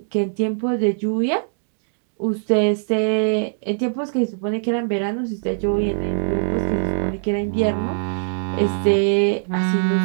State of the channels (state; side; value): silent; left; digital silence